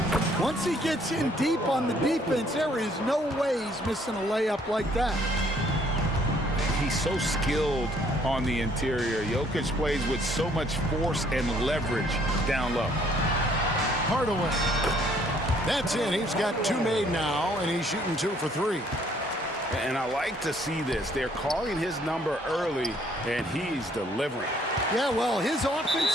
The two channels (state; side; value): normal; both; correlation 0.63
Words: Once he gets in deep on the defense, there is no way he's missing a layup like that. He's so skilled on the interior. Jokic plays with so much force and leverage down low. Hardaway. That's in. He's got 2 made now, and he's shooting 2 for 3. And I like to see this. They're calling his number early, and he's delivering. Yeah, well, his